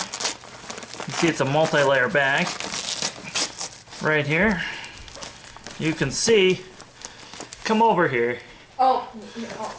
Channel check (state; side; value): identical; both; correlation 1.00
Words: see it's a multi-layer bag. Right here. You can see, come over here. Oh.